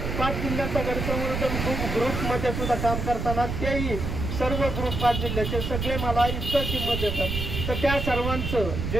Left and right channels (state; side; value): noise; right; rumble, 3 dB below the sound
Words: 5 जिल्ह्यांचा गड संवर्धन ग्रुपमध्ये सुद्धा काम करताना तेही सर्व ग्रुप 5 जिल्ह्याचे सगळे मला इतकं किंमत देतात. तर त्या सर्वांचं